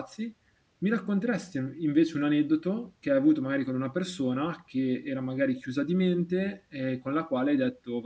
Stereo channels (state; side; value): identical; both; correlation 1.00